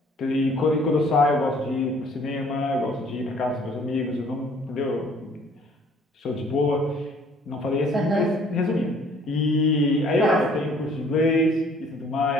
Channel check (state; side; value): normal; both; correlation 0.58